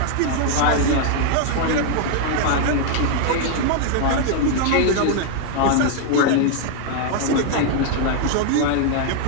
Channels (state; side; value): different; both; correlation 0.00